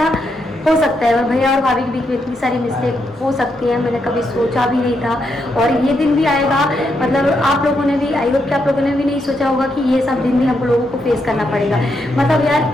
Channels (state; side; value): normal; both; correlation 0.80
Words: हो सकता है और भैया और भाभी के बीच में इतनी सारी मिस्टेक हो सकती है, मैंने कभी सोचा भी नहीं था और ये दिन भी आएगा। मतलब आप लोगों ने भी, आई होप कि आप लोगों ने भी नहीं सोचा होगा कि ये सब दिन भी हम लोगों को फेस करना पड़ेगा। मतलब